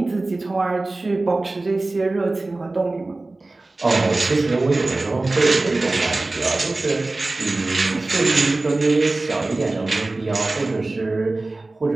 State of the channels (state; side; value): quieter; left; 3.1 dB